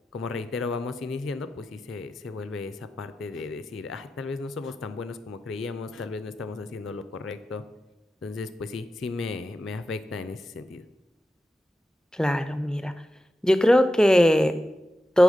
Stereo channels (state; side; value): normal; both; correlation 0.91